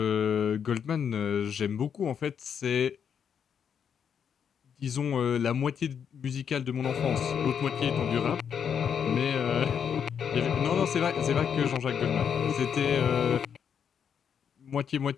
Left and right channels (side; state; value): right; quieter; 7.7 dB